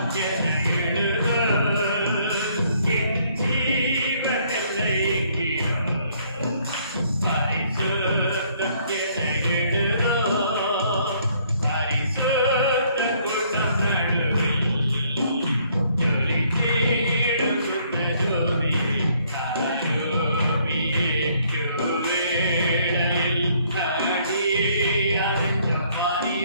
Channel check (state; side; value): inverted; both; correlation -0.65